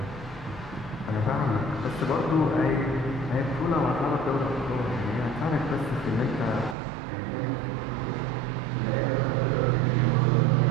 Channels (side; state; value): left; drops out; at 6.8 s